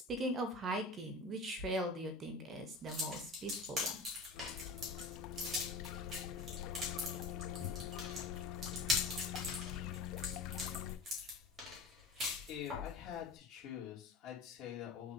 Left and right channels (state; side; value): quieter; right; 3.1 dB